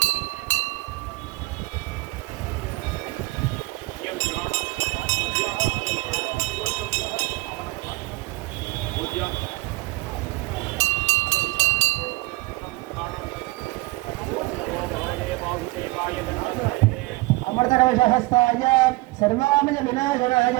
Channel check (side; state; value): left; quieter; 21.8 dB